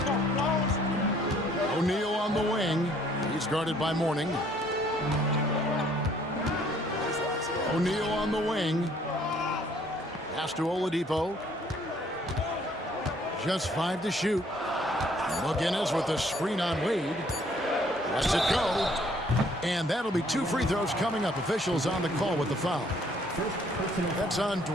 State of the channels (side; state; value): both; normal; correlation 0.62